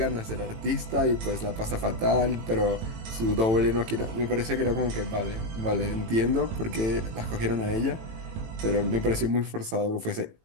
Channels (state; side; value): late; left; 18 ms